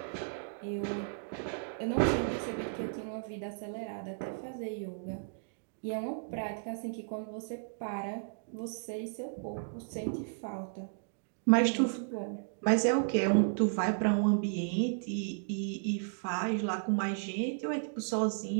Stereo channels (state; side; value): silent; left; digital silence